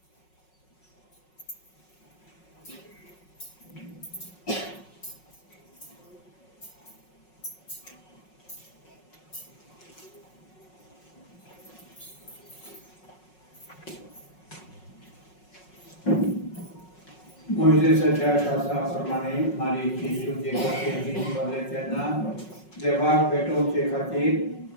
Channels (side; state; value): right; late; 5.4 ms